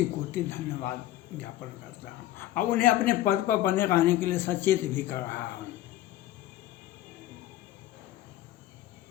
कोटि धन्यवाद ज्ञापन करता हूँ और उन्हें अपने पद पर बने रहने के लिए सचेत भी कर रहा हूँ।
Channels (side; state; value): right; quieter; 14.3 dB